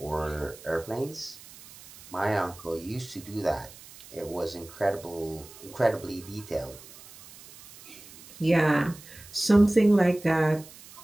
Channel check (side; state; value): right; noise; hiss, 19 dB below the sound